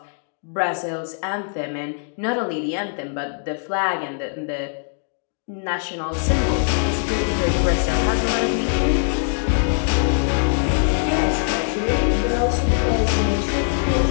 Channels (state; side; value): silent; right; digital silence